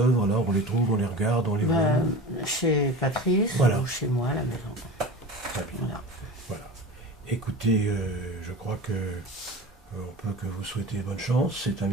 là, on les trouve, on les regarde, on les voit. Chez Patrice ou chez moi à la maison. Très bien. Voilà. Écoutez, je crois que on peut que vous souhaiter bonne chance. C'est un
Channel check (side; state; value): both; normal; correlation 0.33